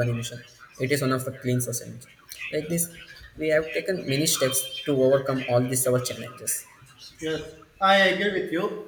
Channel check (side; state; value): both; identical; correlation 1.00